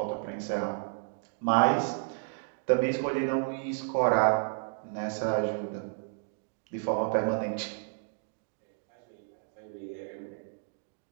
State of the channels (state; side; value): silent; left; digital silence